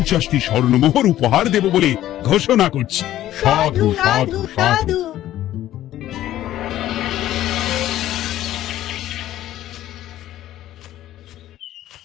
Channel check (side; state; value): right; quieter; 13.4 dB